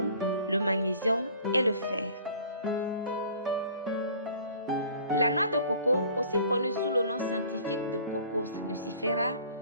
le magnésium et le fer. La noix de coco, aussi connue sous le nom scientifique de Cocos nucifera,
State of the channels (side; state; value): both; inverted; correlation -0.50